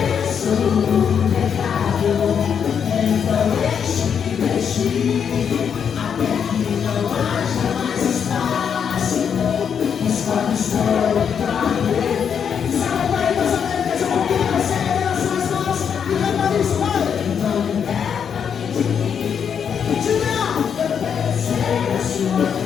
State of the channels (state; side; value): quieter; right; 7.5 dB